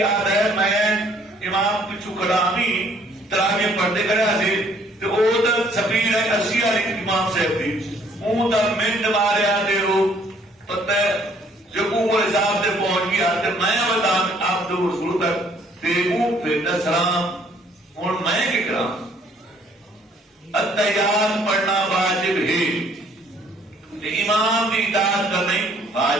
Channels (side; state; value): both; normal; correlation 0.61